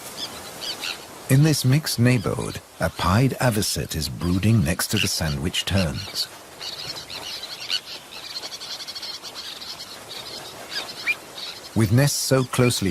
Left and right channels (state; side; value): identical; both; correlation 1.00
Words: In this mixed neighborhood, a pied avocet is brooding next to the sandwich terns. With nests so